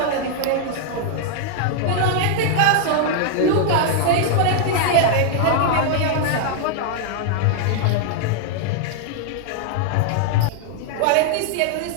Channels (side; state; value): both; different; correlation -0.01